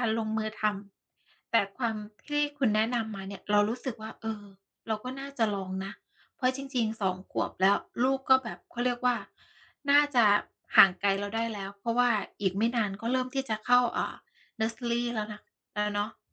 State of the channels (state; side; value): identical; both; correlation 1.00